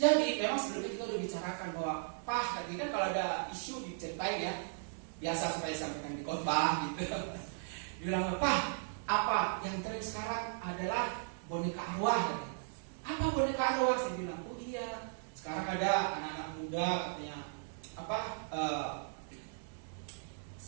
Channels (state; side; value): silent; left; 53 dB below the other